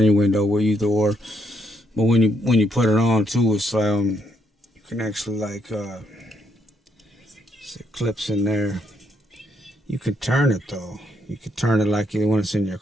your window, or either or. But when you put it on too, it's you can actually like it clips in there. You could turn it though. You could turn it like when it's in your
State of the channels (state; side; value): normal; both; correlation 0.75